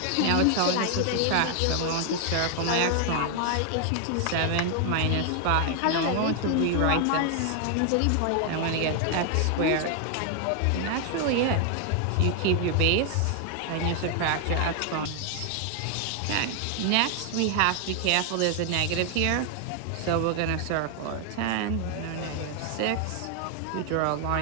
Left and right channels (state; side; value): different; both; correlation 0.00